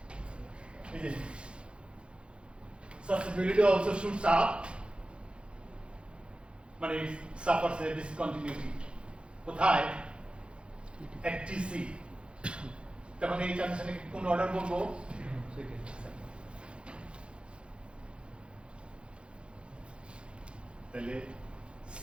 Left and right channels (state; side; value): late; left; 0.057 ms